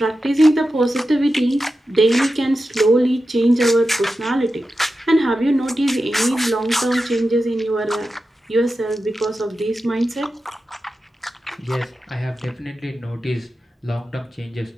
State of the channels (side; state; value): both; normal; correlation 0.91